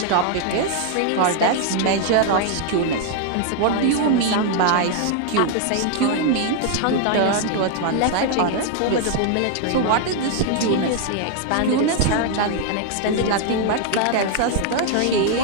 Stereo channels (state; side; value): different; both; correlation 0.00